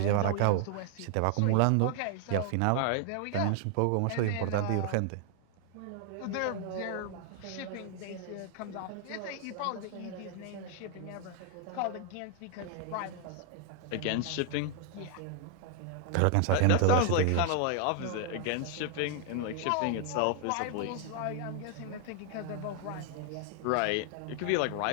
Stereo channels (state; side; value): different; both; correlation 0.00